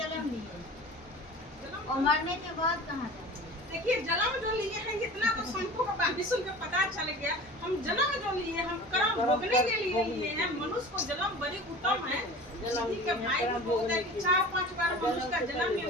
लिए, जन्म और मरने के बाद कहाँ जाएंगे? देखिए जन्म जो लिए हैं इतना तो संतों का बात सुन के पता चल गया। हम जन्म जो लिए हम कर्म भोगने के लिए लिए हैं। मनुष्य को जन्म बड़ी उत्तम है, किसी के भाई को बोलता है कि 4-5 बार मनुष्य का जन्म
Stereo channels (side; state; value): both; normal; correlation 0.38